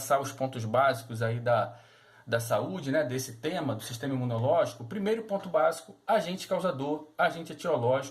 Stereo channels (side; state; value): both; identical; correlation 1.00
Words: os pontos básicos aí da saúde, né, desse tema, do sistema imunológico, o primeiro ponto básico, agente causador, agente